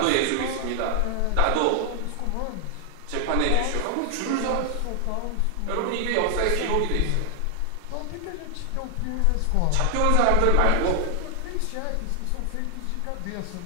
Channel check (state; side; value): different; both; correlation 0.00